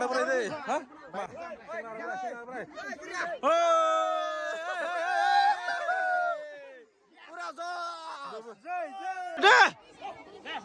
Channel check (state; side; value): identical; both; correlation 1.00